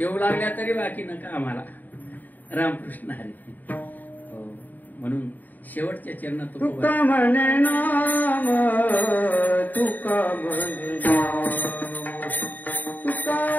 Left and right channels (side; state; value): right; late; 0.085 ms